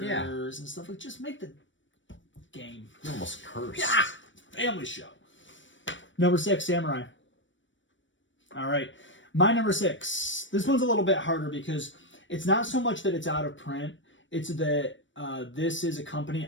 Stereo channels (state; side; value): late; right; 0.55 ms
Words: and stuff. Just make the game. You're almost cursed. Yeah! Family show. Number 6, Samurai. All right. My number 6. This one's a little bit harder because it's not so much that it's out of print. It's that this is a company,